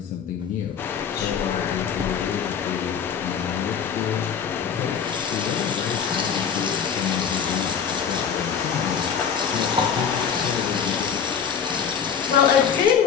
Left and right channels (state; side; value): quieter; right; 7.3 dB